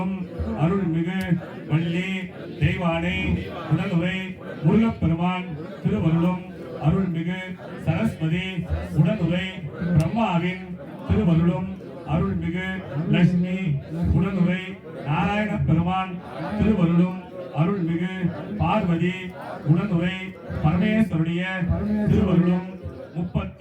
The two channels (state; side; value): identical; both; correlation 1.00